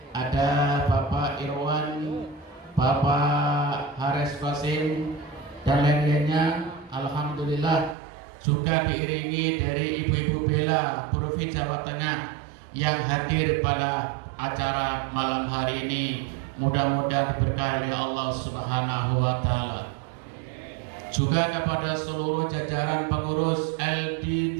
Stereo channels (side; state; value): left; drops out; at 8.0 s